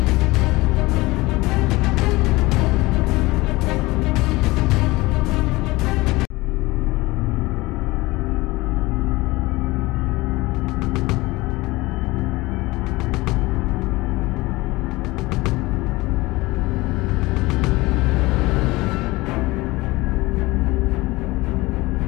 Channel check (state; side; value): quieter; right; 21.1 dB